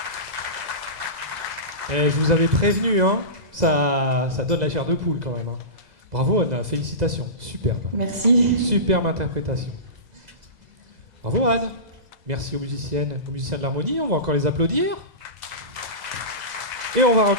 Et je vous avais prévenu, hein, ça donne la chair de poule quand même. Hein. Bravo Anna, félicitations, superbe. Merci. Superbe interprétation. Bravo Anne. Merci aux musiciens de l'harmonie, on va encore les applaudir. Et on va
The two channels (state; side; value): late; left; 2.0 ms